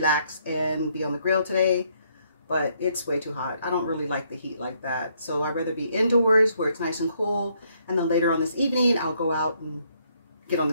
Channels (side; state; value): both; inverted; correlation -0.71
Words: and be on the grill today, but it's way too hot. I don't really like the heat like that. So I'd rather be indoors where it's nice and cool. And then later on this evening, I'll go out and get on